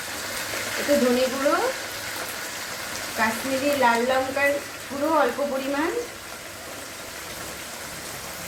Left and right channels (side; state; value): both; identical; correlation 1.00